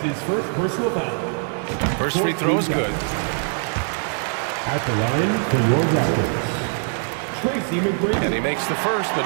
his first personal foul. First free throw is good. At the line for your Raptors, Tracy McGrady. And he makes the first, but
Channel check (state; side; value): silent; left; 55 dB below the other